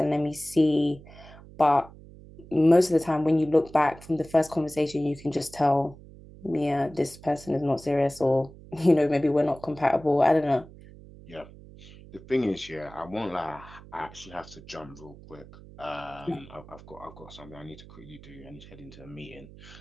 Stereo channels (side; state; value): right; noise; hum, 19 dB below the sound